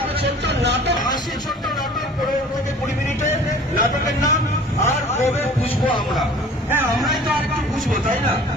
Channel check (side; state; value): both; normal; correlation 0.47